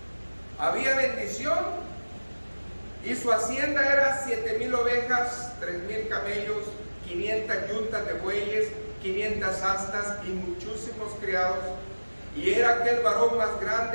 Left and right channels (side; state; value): both; inverted; correlation -1.00